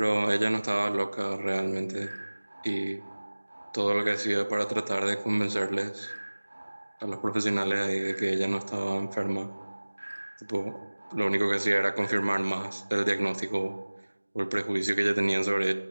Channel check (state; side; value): inverted; both; correlation -1.00